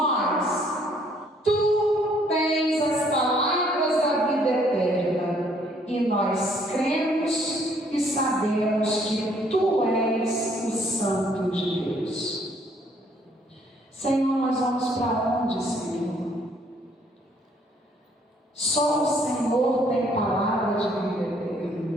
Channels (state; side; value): normal; both; correlation 0.64